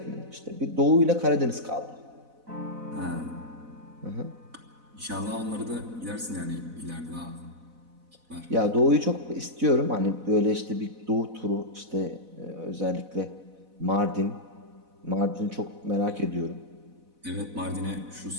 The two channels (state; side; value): late; left; 4.0 ms